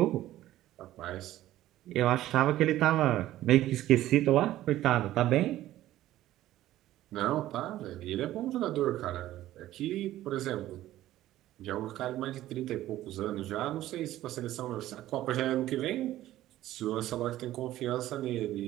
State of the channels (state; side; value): quieter; left; 14.3 dB